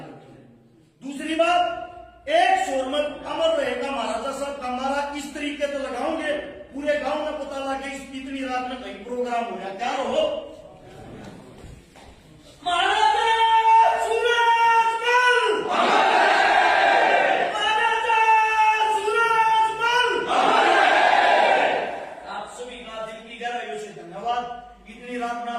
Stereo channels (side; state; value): both; identical; correlation 1.00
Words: दूसरी बात, एक शोर में अमर रहेगा महाराजा साहब का नारा इस तरीके से लगाओगे, पूरे गांव में पता लगे इतनी रात में कहीं प्रोग्राम हो रहा, क्या हो महाराजा सूरजमल, महाराजा सूरजमल। आप सभी का दिल की गहराइयों से धन्यवाद। इतनी रात में